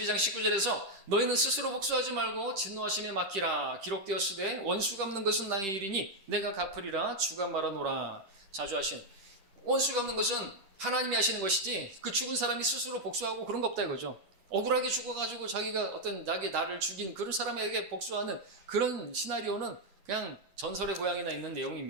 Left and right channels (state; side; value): late; left; 10 ms